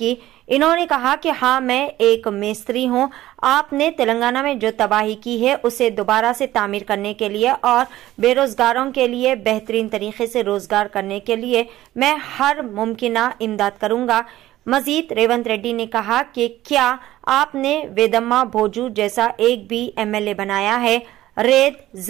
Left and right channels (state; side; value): quieter; left; 15.0 dB